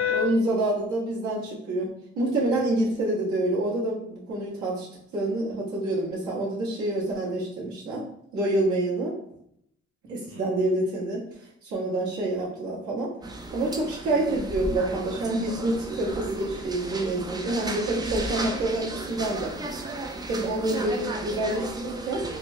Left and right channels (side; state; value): both; normal; correlation 0.47